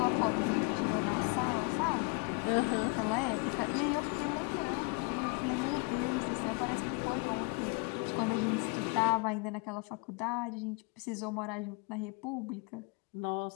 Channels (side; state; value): right; quieter; 30.6 dB